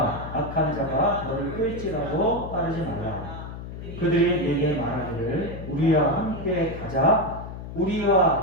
악한 자가 너를 끌지라도 따르지 말라. 그들이 내게 말하기를 우리와 함께 가자.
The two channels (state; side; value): noise; left; hum, 10 dB below the sound